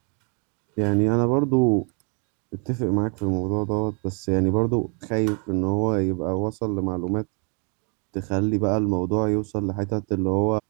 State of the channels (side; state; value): left; quieter; 36.3 dB